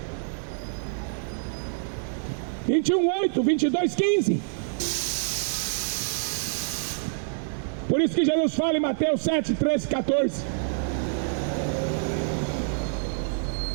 21, 8, 22, 15. Por isso que Jesus fala em Mateus 7, 13, 14.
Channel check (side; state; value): left; silent; digital silence